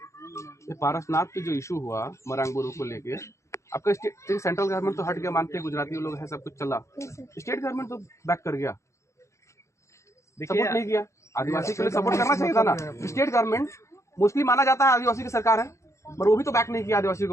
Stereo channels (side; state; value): right; late; 0.14 ms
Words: पारसनाथ पे जो इशू हुआ मरांग बोरो को लेके, आपका सेंट्रल गवर्नमेंट तो हट गया, मानते हैं गुजराती लोग हैं, सब कुछ चला, स्टेट गवर्नमेंट तो बैक कर गया, सपोर्ट नहीं किया। आदिवासी के लिए सपोर्ट करना चाहिए था ना। स्टेट गवर्नमेंट मोस्टली माना जाता है आदिवासी की सरकार है, पर वो भी तो बैक नहीं किया आदिवासी